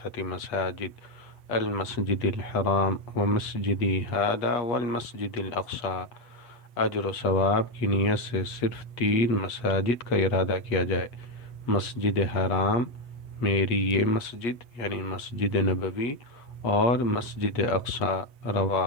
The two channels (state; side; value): late; right; 8.1 ms